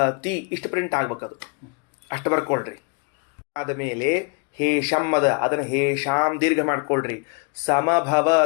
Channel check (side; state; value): right; quieter; 34.6 dB